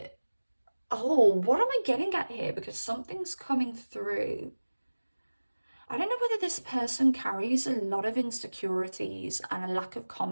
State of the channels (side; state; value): both; inverted; correlation -1.00